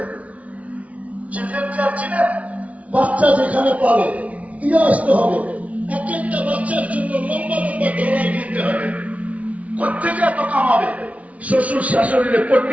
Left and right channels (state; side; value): late; left; 0.067 ms